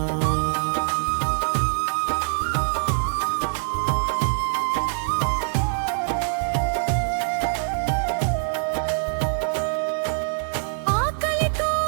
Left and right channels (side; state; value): left; silent; digital silence